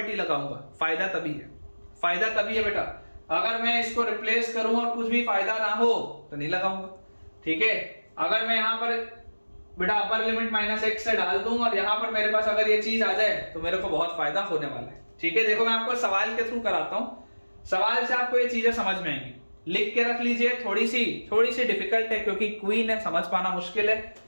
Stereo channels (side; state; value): both; inverted; correlation -1.00